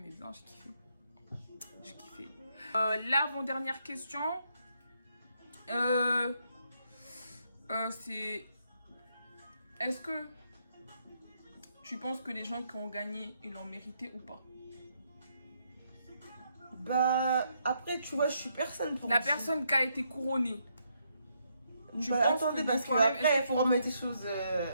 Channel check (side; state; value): both; inverted; correlation -0.76